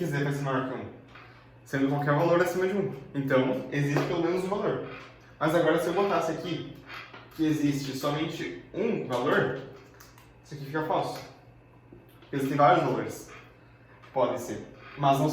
z vai ser maior que 1, sendo qualquer valor acima de 1. Então, existe pelo menos um valor. Mas agora, se eu botasse aqui que existe somente um valor, isso aqui fica falso. Porque existem vários valores. Podem ser. Mas não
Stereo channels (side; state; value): both; identical; correlation 1.00